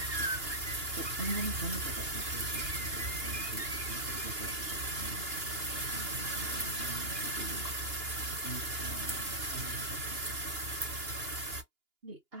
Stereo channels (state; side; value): late; left; 2.9 ms